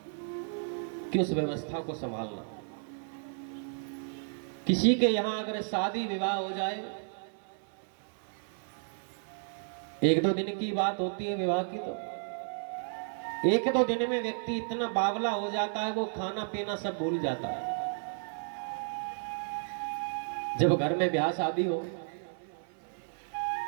कि उस व्यवस्था को संभालना। किसी के यहां अगर शादी विवाह हो जाए, एक दो दिन की बात होती है विवाह की, तो एक दो दिन में व्यक्ति इतना बावला हो जाता है, वो खाना पीना सब भूल जाता है। जब घर में ब्याह शादी हो,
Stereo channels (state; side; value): silent; left; 56 dB below the other